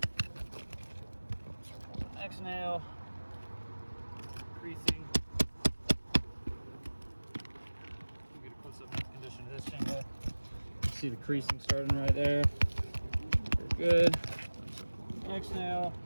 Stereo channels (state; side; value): inverted; both; correlation -1.00